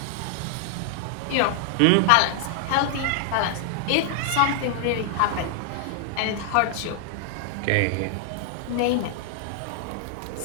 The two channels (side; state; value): both; different; correlation 0.00